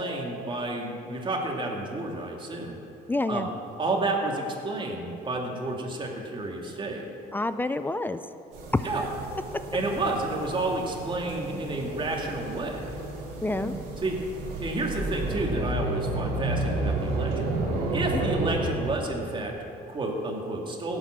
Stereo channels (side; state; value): both; normal; correlation 0.49